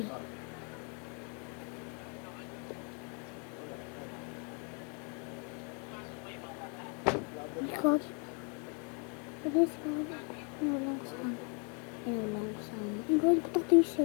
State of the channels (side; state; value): right; quieter; 37.6 dB